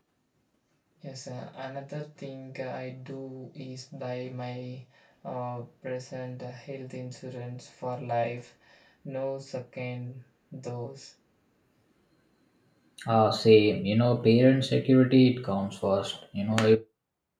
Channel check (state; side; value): identical; both; correlation 1.00